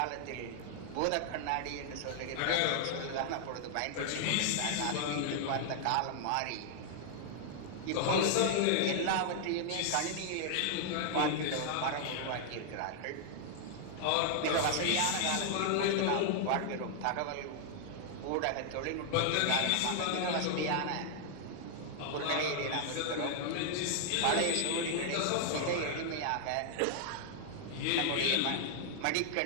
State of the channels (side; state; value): both; different; correlation 0.00